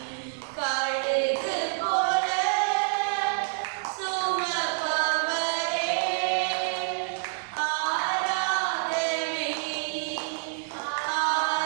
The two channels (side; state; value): left; silent; digital silence